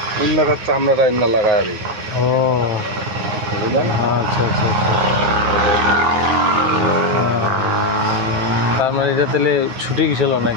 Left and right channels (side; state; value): left; late; 9.6 ms